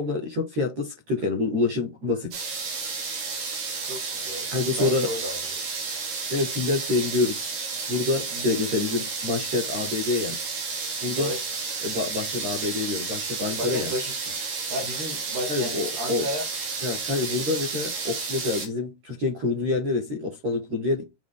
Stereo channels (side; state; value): left; late; 13 ms